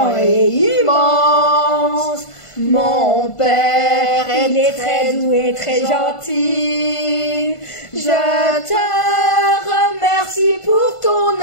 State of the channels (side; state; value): right; late; 1.5 ms